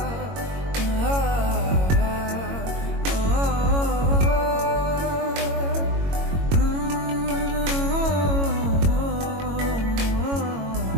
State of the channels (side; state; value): left; late; 22 ms